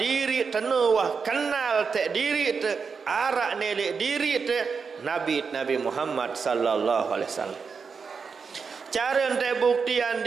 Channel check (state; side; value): quieter; left; 5.5 dB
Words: tenuah kenal tek diri te arak nelek diri te Nabi Muhammad sallallahu alaihi wasallam. Cara ente buktian